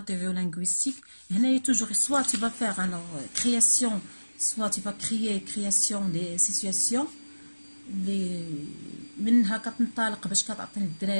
لينغويستيك هنايا توجور سوا تي با فيغ الوغ كرياسيون soit tu vas création des situations اللي منها كتنطلق باش كتعطي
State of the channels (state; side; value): inverted; both; correlation -1.00